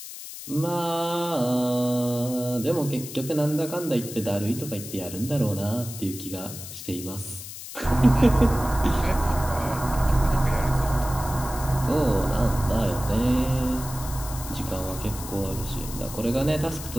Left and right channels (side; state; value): left; noise; hiss, 11 dB below the sound